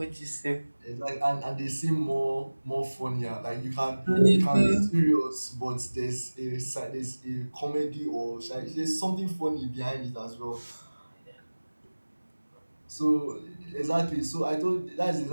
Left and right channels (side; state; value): both; inverted; correlation -1.00